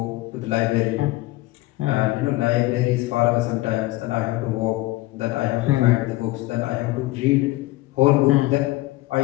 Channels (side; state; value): right; quieter; 18.9 dB